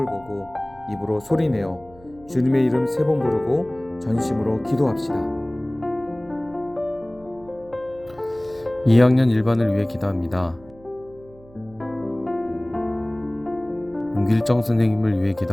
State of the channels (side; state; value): right; noise; hum, 24 dB below the sound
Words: 보고 입으로 소리내어 주님의 이름 3번 부르고 전심으로 기도합시다. 2학년 1반을 위해 기도합니다. 윤길정 선생님을 위해